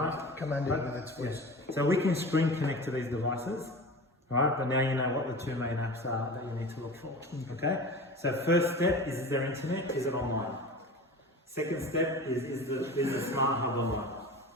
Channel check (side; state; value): both; normal; correlation 0.34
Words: command it Right. with its voice. So we can screen connect to these devices, alright, but now you know what the two main apps are that you need to look for. Okay? So first step is there internet? Is it online? Second step is the smart hub online?